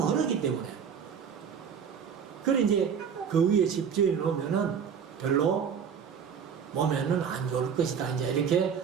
흐르기 때문에, 그래 이제 그 위에 집 지어 놓으면은 별로 몸에는 안 좋을 것이다, 이제 이렇게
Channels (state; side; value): quieter; left; 7.1 dB